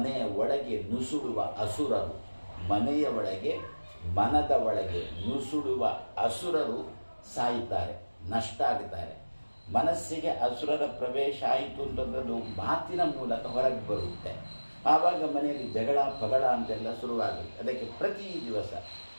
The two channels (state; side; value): inverted; both; correlation -1.00